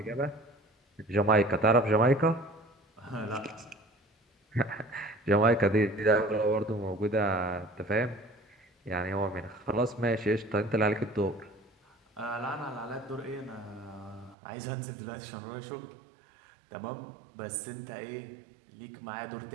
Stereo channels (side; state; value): left; drops out; at 14.4 s